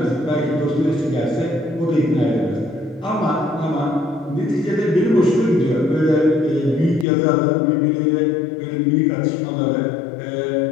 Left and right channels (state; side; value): drops out; right; at 7.1 s